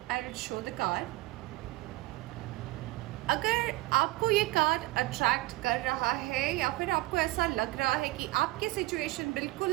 I will show the card. अगर आपको ये कार्ड अट्रैक्ट कर रहा है या फिर आपको ऐसा लग रहा है कि आपकी सिचुएशन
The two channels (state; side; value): quieter; left; 19.5 dB